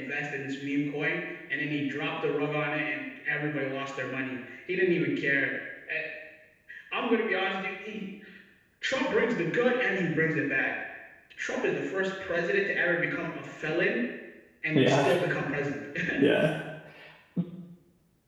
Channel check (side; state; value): both; identical; correlation 1.00